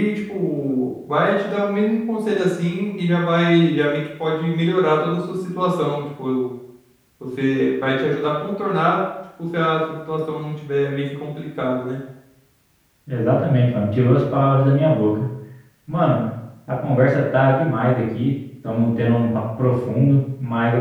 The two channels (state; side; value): identical; both; correlation 1.00